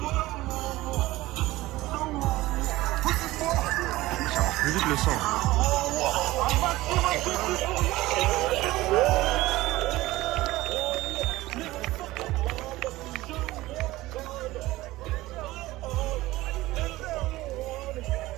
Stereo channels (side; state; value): left; quieter; 17.9 dB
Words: Ça marche plus vite le sang.